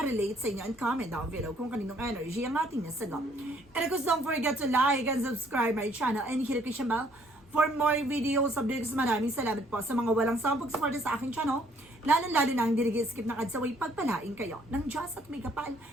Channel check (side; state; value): both; normal; correlation 0.64